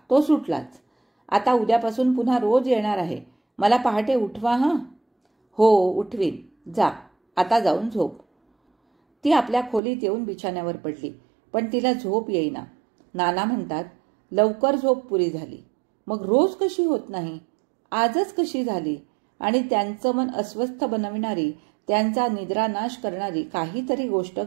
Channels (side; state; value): left; drops out; at 9.8 s